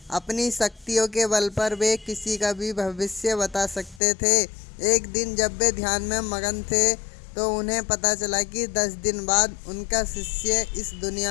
अपनी शक्तियों के बल पर वे किसी का भी भविष्य बता सकते थे। एक दिन जब वे ध्यान में मगन थे तो उन्हें पता चला कि 10 दिन बाद उनका शिष्य इस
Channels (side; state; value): right; drops out; at 4.0 s